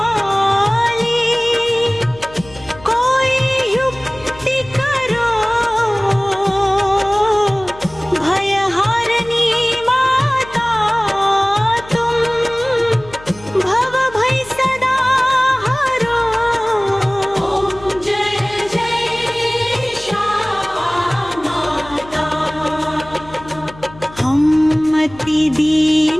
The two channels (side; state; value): left; noise; hum, 20 dB below the sound